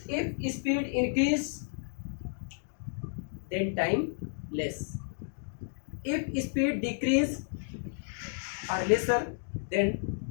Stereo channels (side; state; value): right; silent; digital silence